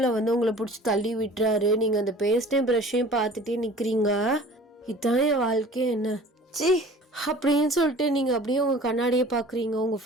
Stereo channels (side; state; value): both; normal; correlation 0.46